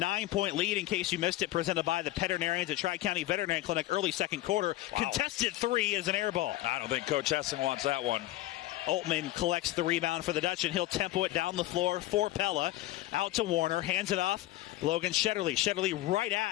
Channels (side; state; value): right; quieter; 16.5 dB